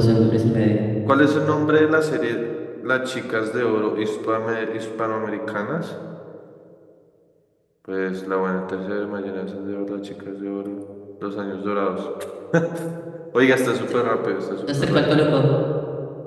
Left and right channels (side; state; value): both; identical; correlation 1.00